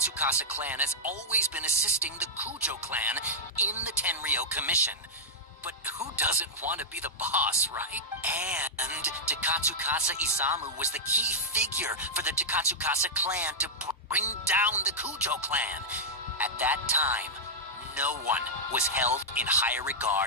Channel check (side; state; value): both; normal; correlation -0.07